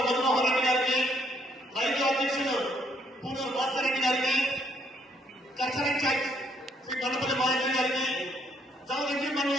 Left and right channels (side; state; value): both; normal; correlation 0.69